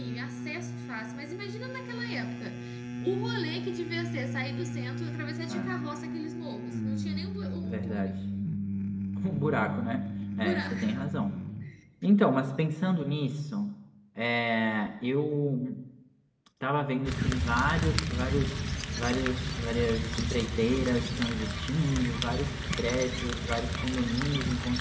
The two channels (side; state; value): both; identical; correlation 1.00